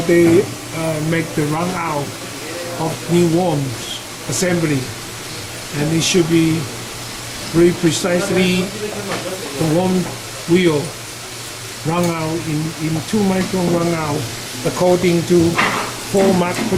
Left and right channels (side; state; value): both; identical; correlation 1.00